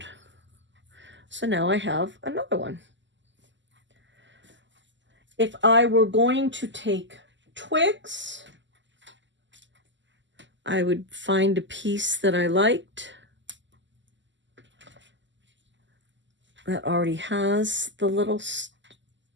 So now I have another one. If I were going to take twigs I would find a piece that I liked that already has the little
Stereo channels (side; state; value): left; late; 0.54 ms